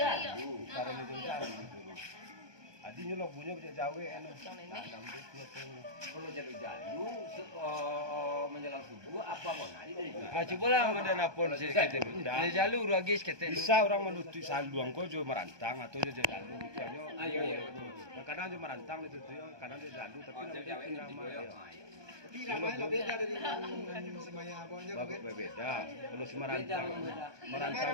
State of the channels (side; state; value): left; late; 1.2 ms